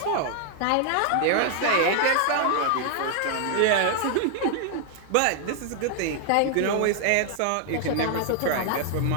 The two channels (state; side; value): different; both; correlation 0.00